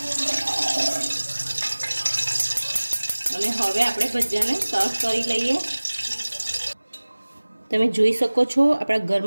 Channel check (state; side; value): inverted; both; correlation -1.00